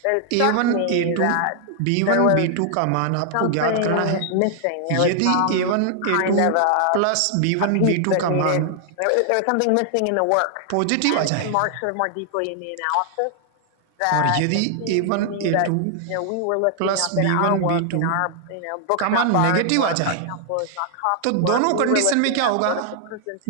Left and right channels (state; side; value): different; both; correlation 0.00